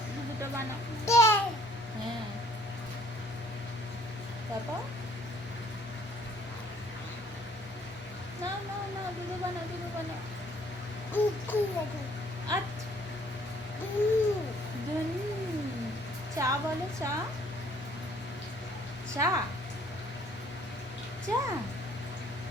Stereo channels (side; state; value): left; noise; hum, 17 dB below the sound